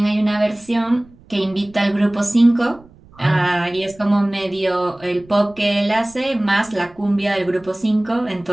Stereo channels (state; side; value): noise; right; rumble, 26 dB below the sound